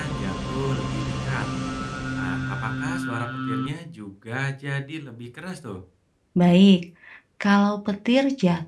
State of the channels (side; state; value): both; identical; correlation 1.00